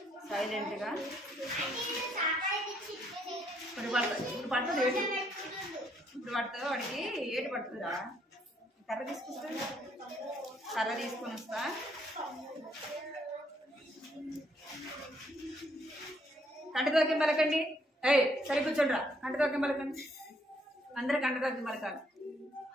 సైలెంట్గా. ఇప్పుడు పడుతుంది ఏటు, ఇప్పుడు పడుతుంది వాడికి ఏటు పడుతుందా? కర్ర తీసుకొస్తా, కర్ర తీసుకొని వస్తా. కంటితోకి పలకండి. సరే కూర్చోండి రా. కంటితోకి పలకండి, అందరూ కంటితోకి పలకాలి.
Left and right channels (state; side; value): normal; both; correlation 0.70